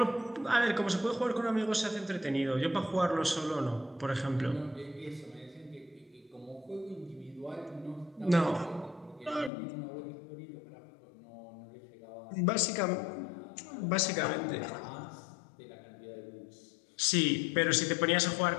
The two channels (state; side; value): drops out; right; at 9.5 s